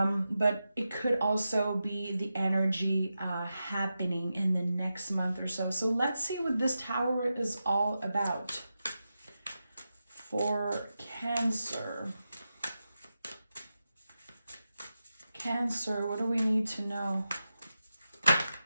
it could also be the energy happening in the next month or so. So let's see what this Tower is all about for Cancer. Cancer, what do we need to know?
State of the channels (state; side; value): inverted; both; correlation -0.90